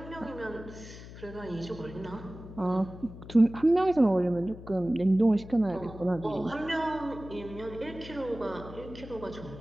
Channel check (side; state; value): left; noise; hum, 14 dB below the sound